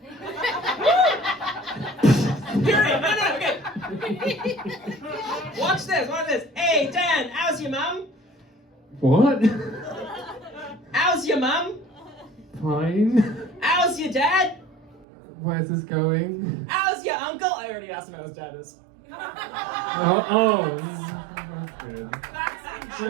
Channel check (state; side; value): drops out; left; at 15.1 s